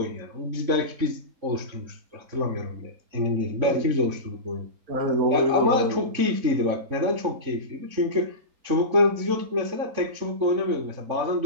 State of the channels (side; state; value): left; late; 3.6 ms